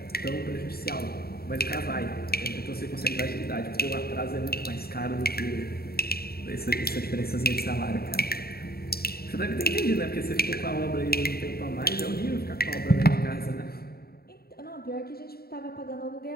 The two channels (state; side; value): late; right; 0.45 ms